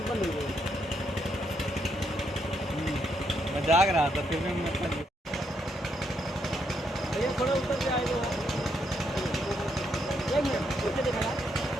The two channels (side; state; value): both; normal; correlation 0.77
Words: मैं जाग रहा था फिर भी मैं थोड़ा ऊपर से आएगा